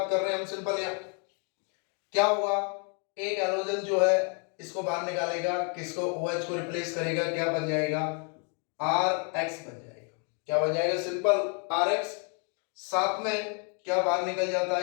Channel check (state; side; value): quieter; right; 39.1 dB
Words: कर रहे हैं हम सिंपल। यहाँ क्या होगा? एक हैलोजन जो है इसको बाहर निकालेगा, किसको? OH को रिप्लेस करेगा, क्या बन जाएगा? RX बन जाएगा। क्या बन जाएगा? Simple RX। साथ में क्या बाहर निकल जाता